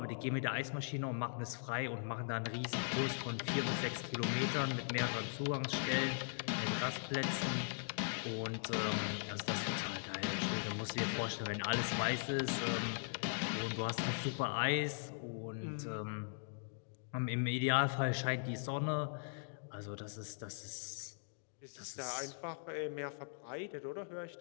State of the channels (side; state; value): right; silent; digital silence